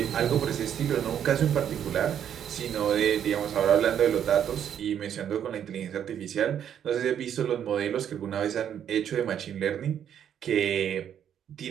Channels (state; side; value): quieter; left; 9.3 dB